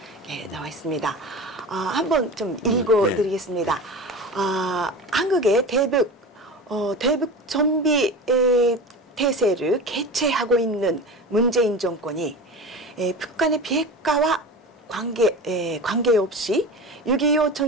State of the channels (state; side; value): normal; both; correlation 0.31